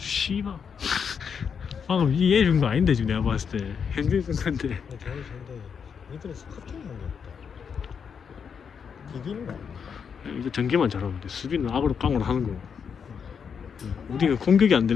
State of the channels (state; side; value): quieter; right; 6.7 dB